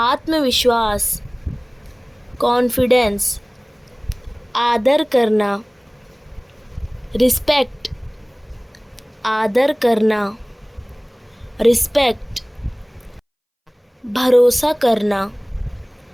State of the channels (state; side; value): identical; both; correlation 1.00